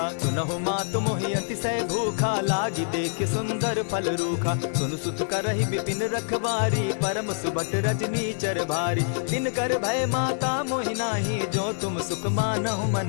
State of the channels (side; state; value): right; silent; digital silence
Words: सुनहु मातु मोहि अतिशय भूखा लागी देख सुंदर फल रूखा। सुनु सुत करहि विपिन रखवारी परम सुबट रजनी चर भारी। दिन कर भय माता मोहि नाही जो तुम सुख मानहु